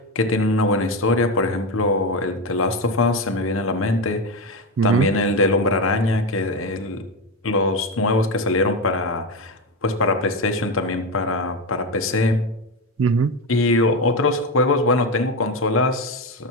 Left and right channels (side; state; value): both; normal; correlation 0.14